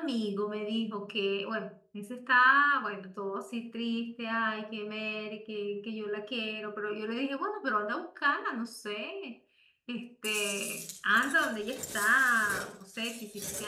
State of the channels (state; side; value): identical; both; correlation 1.00